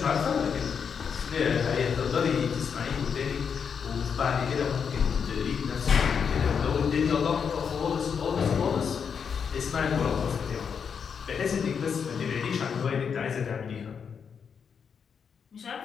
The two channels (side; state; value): right; quieter; 6.7 dB